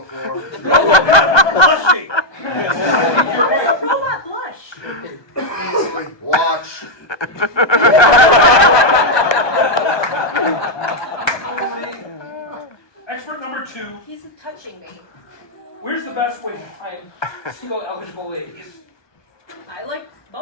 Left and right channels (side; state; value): right; late; 1.2 ms